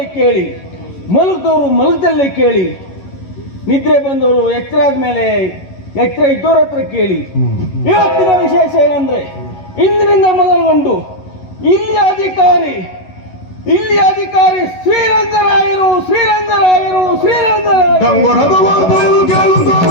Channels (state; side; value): late; right; 11 ms